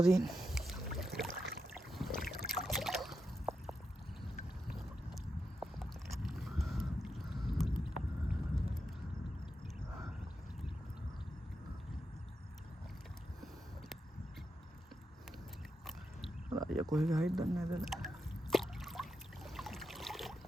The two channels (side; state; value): both; normal; correlation 0.86